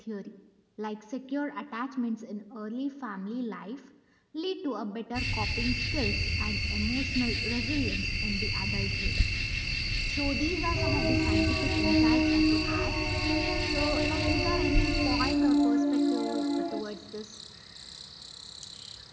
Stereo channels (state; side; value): identical; both; correlation 1.00